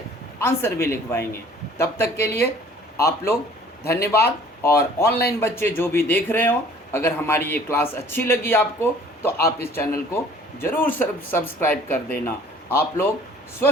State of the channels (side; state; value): both; normal; correlation 0.52